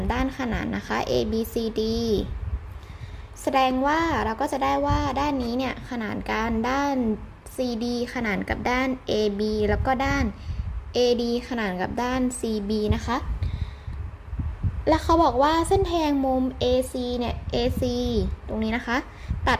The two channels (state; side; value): identical; both; correlation 1.00